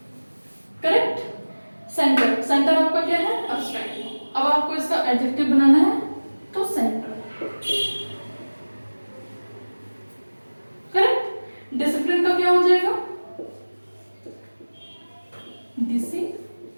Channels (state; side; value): inverted; both; correlation -1.00